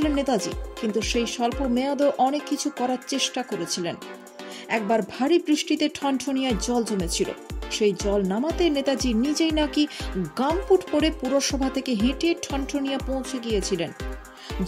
নেতাজি, কিন্তু সেই স্বল্প মেয়াদেও অনেক কিছু করার চেষ্টা করেছিলেন। একবার ভারী বৃষ্টিতে ঠনঠনিয়ায় জল জমেছিল। সেই জল নামাতে নেতাজি নিজেই নাকি গামপুট পরে পুরসভা থেকে হেঁটে ঠনঠনিয়া পৌঁছে গিয়েছিলেন।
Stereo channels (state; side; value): identical; both; correlation 1.00